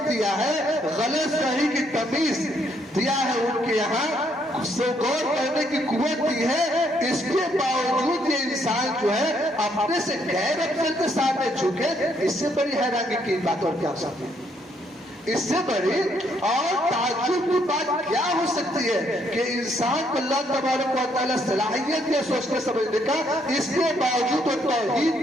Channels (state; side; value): normal; both; correlation 0.71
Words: دیا ہے، غلط صحیح کی تمیز دیا ہے ان کے یہاں، غور کرنے کی قوت دی ہے۔ اس کے باوجود یہ انسان جو ہے اپنے سے غیر افضل کے سامنے جھکے، اس سے بڑی حیرانی کی بات اور کیا ہو سکتی ہے؟ اس سے بڑی اور تعجب کی بات کیا ہو سکتی ہے کہ انسان کو اللہ تبارک و تعالیٰ صلاحیت ہے سوچنے سمجھنے کا، اس کے باوجود وہ توحید